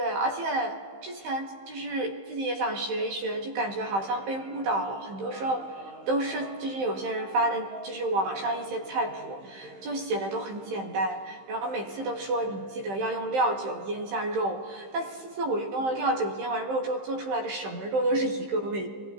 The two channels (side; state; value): left; late; 15 ms